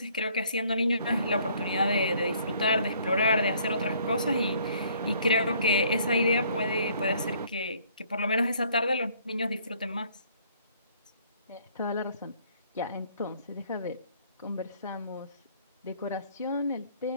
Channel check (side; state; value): both; inverted; correlation -0.61